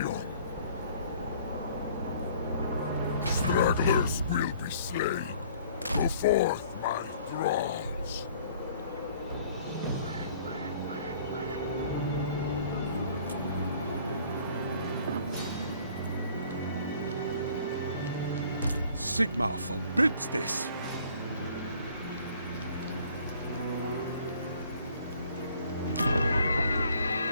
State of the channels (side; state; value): both; inverted; correlation -0.55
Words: Stragglers will be slain. Go forth, my thralls. Sigmar forbids this.